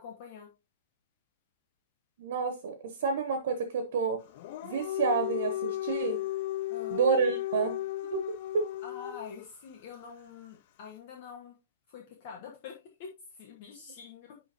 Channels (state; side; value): inverted; both; correlation -0.42